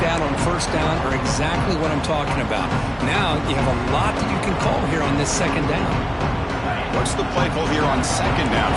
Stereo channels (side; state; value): both; identical; correlation 1.00